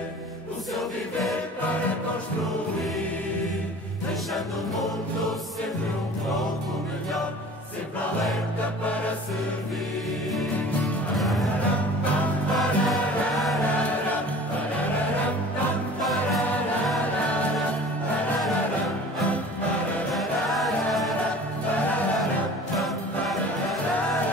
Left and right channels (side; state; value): both; normal; correlation 0.44